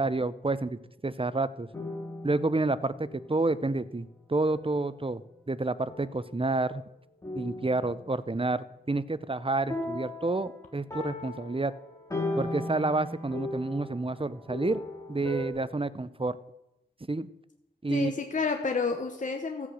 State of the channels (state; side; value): normal; both; correlation 0.66